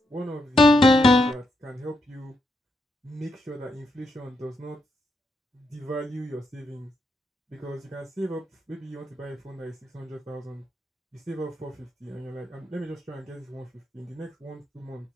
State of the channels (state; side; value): normal; both; correlation 0.81